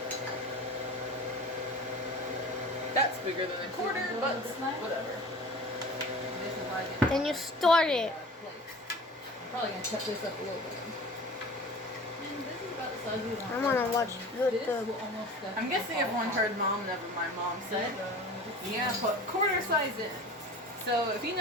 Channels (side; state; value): both; normal; correlation 0.39